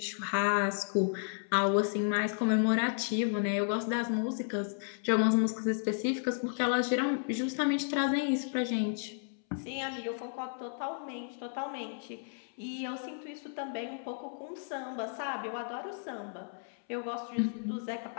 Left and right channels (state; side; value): silent; right; 56 dB below the other